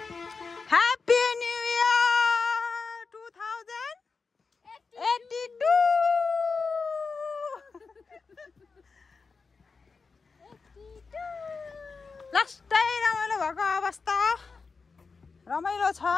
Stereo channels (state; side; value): quieter; right; 4.7 dB